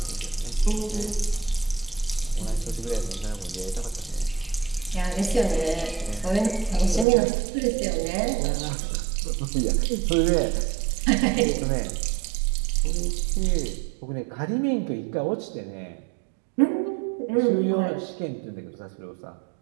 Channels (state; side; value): drops out; left; at 7.1 s